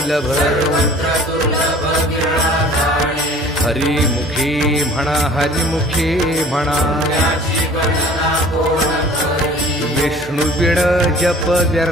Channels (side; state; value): both; normal; correlation 0.48